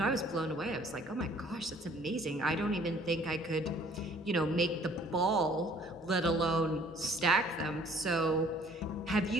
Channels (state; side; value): normal; both; correlation 0.56